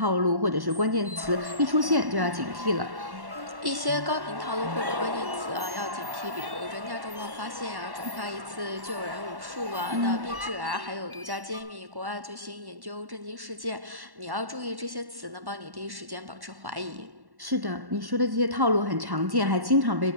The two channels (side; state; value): left; late; 1.1 ms